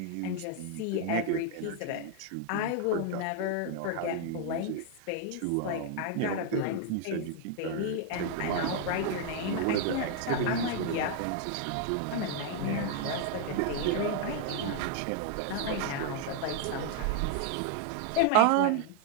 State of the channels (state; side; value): different; both; correlation 0.00